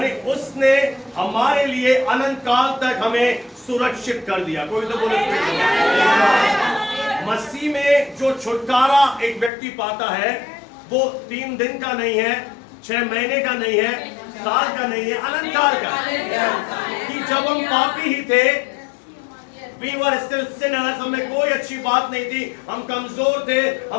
उसने हमारे लिए अनंत काल तक हमें सुरक्षित कर दिया। कोई तो बोले मसीह में जो छुटकारा एक व्यक्ति पाता है, वो 3 दिन का नहीं है, 6 महीने का नहीं है, साल का नहीं है, अनंत काल का। कि जब हम पापी ही थे, we were still sinners, हमें कोई अच्छी बात नहीं थी, हम कमजोर थे,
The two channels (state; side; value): drops out; right; at 9.5 s